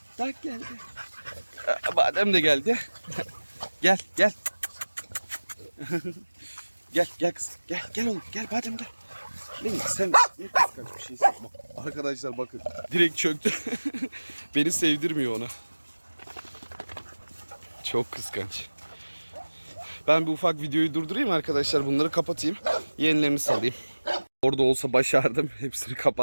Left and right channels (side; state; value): both; inverted; correlation -1.00